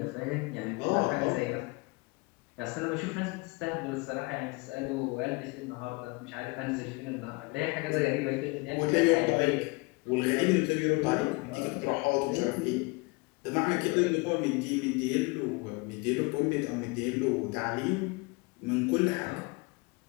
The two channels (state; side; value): quieter; right; 27.0 dB